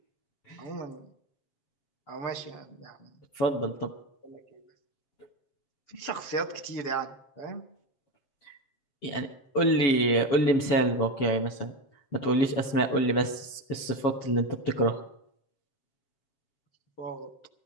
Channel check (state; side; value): late; right; 7.1 ms